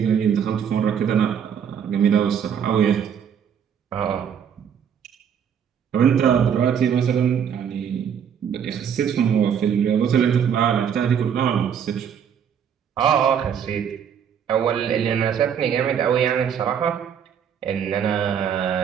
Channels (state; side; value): quieter; left; 8.1 dB